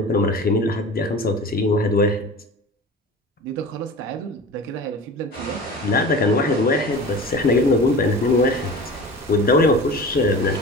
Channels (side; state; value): both; normal; correlation 0.36